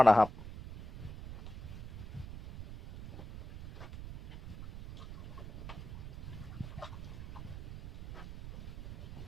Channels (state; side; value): noise; right; rumble, 12 dB below the sound